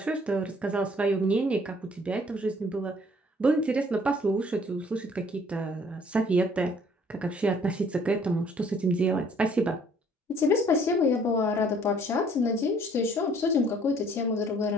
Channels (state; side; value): normal; both; correlation 0.59